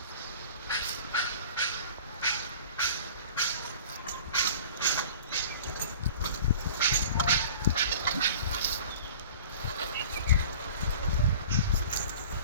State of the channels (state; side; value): inverted; both; correlation -0.43